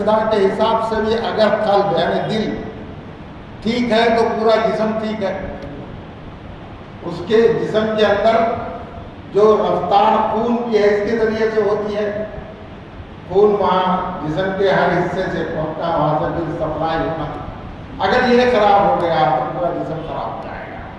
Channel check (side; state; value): both; identical; correlation 1.00